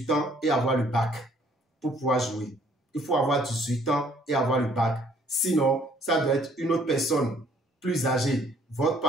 ans et avoir le bac pour pouvoir jouer. Il faut avoir 18 ans et avoir le bac. Sinon, ça doit être une autre personne plus âgée, votre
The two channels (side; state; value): both; normal; correlation 0.61